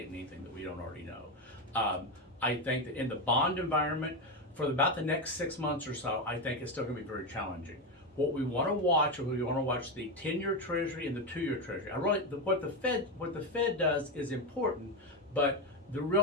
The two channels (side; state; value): both; normal; correlation 0.12